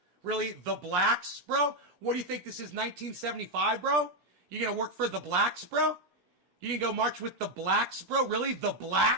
Really? The blacks, bro? What do you think this is, 1975, bro? You gonna work for the blacks, bro? You gonna go march with the blacks, bro? Really? The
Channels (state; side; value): late; left; 16 ms